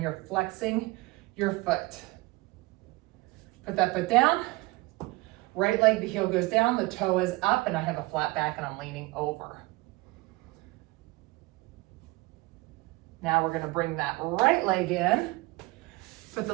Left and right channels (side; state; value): left; quieter; 22.8 dB